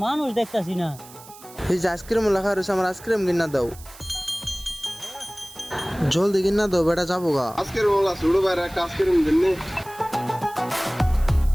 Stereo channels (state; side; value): noise; right; hiss, 20 dB below the sound